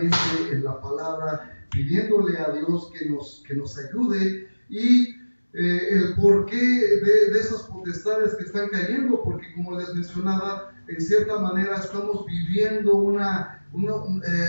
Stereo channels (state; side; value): inverted; both; correlation -1.00